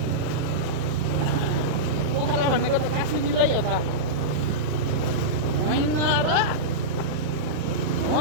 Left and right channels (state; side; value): late; left; 40 ms